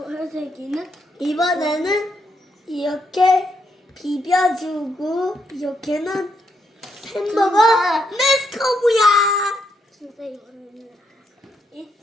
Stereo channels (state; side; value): normal; both; correlation 0.77